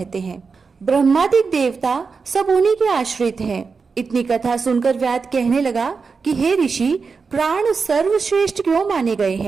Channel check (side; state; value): left; quieter; 5.0 dB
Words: हैं। ब्रह्मादिक देवता सब उन्हीं के आश्रित हैं। इतनी कथा सुनकर व्याध कहने लगा कि हे ऋषि, प्राण सर्वश्रेष्ठ क्यों माने गए